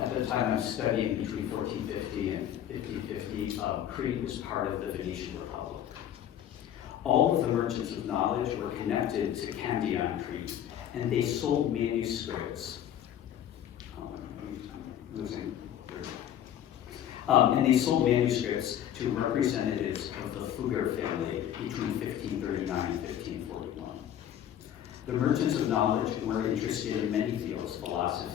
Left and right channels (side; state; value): right; quieter; 10.6 dB